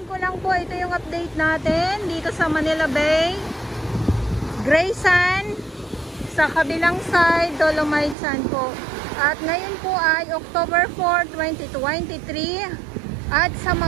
ko lang po, ito yung update natin dito sa Manila Bay. Gray Sand, sa kabilang side, Dolomite Sand po. At ngayon po ay October 4, 2023. At sa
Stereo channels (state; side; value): drops out; left; at 8.2 s